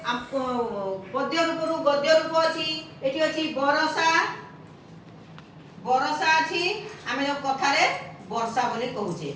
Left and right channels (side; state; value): both; identical; correlation 1.00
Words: पद्य रूप रु गद्य रूप अछि एठी अछि बरसा बरसा अछि आमे जो कथा रे वर्षा बोली कहूचे